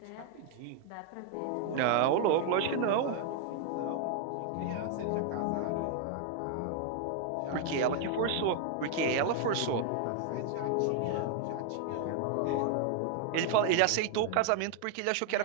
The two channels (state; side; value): different; both; correlation 0.00